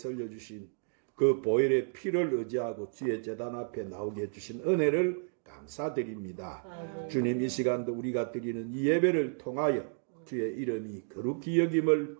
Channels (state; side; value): silent; left; 56 dB below the other